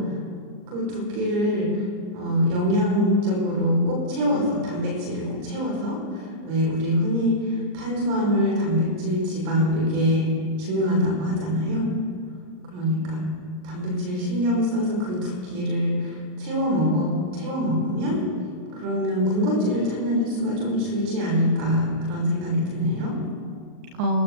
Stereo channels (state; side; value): late; left; 39 ms